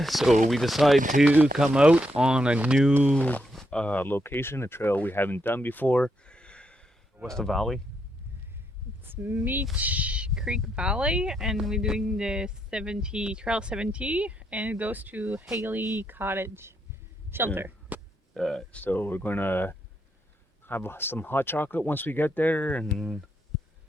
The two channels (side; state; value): both; normal; correlation 0.79